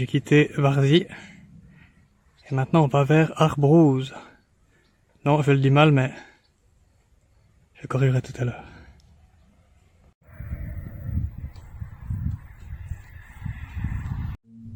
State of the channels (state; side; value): identical; both; correlation 1.00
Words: quitté Varzy. Et maintenant on va vers Arbrouz. Non, je le dis mal, mais je corrigerai tout à l'heure.